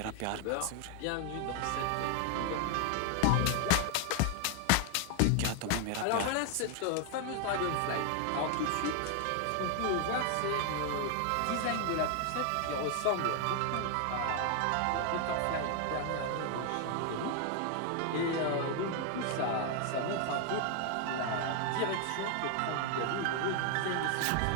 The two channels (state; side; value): different; both; correlation 0.00